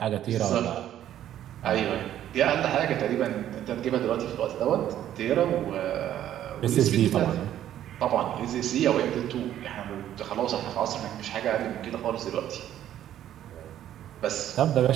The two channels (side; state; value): left; quieter; 11.6 dB